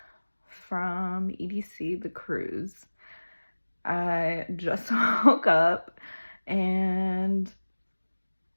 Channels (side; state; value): both; inverted; correlation -1.00